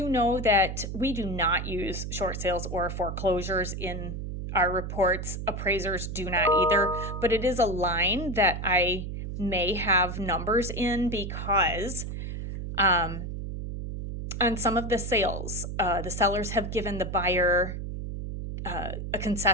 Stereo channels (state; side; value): noise; right; hum, 6 dB below the sound